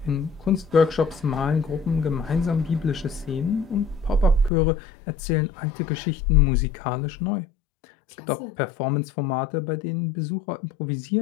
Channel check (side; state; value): right; drops out; at 4.5 s